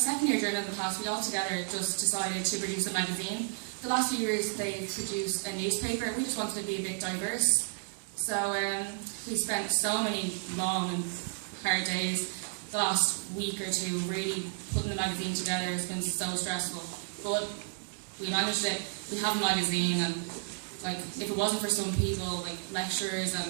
year journal in the class, we all together just decided to produce a magazine. The last few years they've produced a newspaper. We just wanted to be a bit diverse. So we spent so many long and hard days the last week or two really putting the magazine together. It's been so stressful, but we managed it. We have a magazine, and like if it wasn't for some people, like lecturers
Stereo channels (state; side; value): silent; left; 56 dB below the other